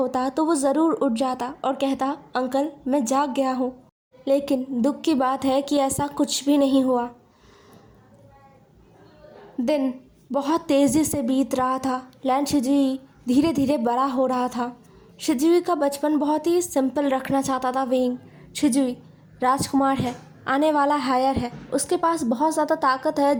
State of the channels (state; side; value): identical; both; correlation 1.00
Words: तो वो ज़रूर उठ जाता और कहता, अंकल मैं जाग गया हूँ। लेकिन दुख की बात है कि ऐसा कुछ भी नहीं हुआ। दिन बहुत तेज़ी से बीत रहा था। लैन शिजुई धीरे धीरे बड़ा हो रहा था। शिजुई का बचपन बहुत ही सिंपल रखना चाहता था विंग। शिजुई राजकुमार है, आने वाला हायर है, उसके पास बहुत ज़्यादा ताकत है